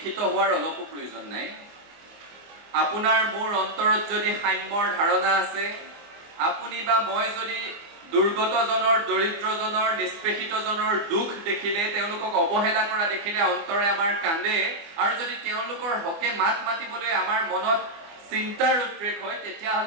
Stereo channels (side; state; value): left; late; 24 ms